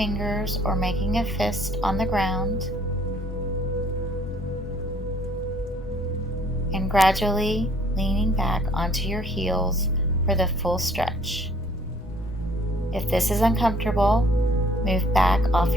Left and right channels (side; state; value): left; noise; rumble, 14 dB below the sound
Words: or making a fist on the ground, and gradually leaning back onto your heels for the full stretch. If this is uncomfortable, move back off